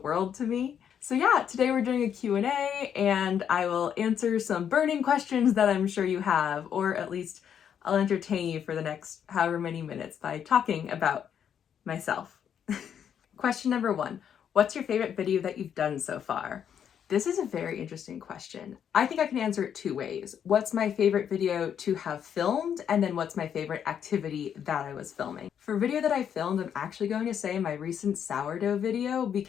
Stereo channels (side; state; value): right; quieter; 8.5 dB